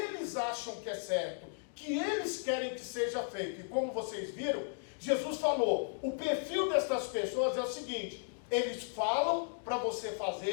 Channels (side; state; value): right; silent; digital silence